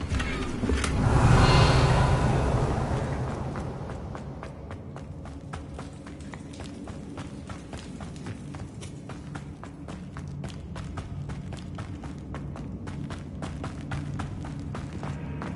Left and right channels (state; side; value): identical; both; correlation 1.00